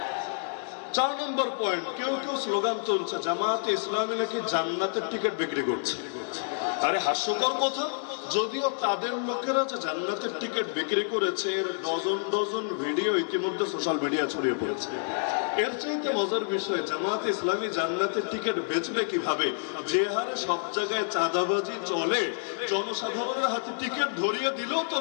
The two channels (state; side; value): silent; right; digital silence